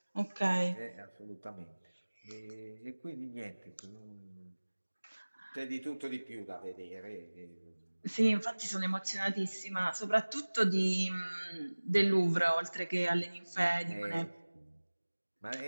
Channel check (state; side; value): inverted; both; correlation -1.00